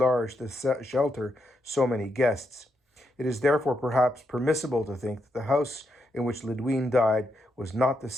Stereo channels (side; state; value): both; normal; correlation 0.82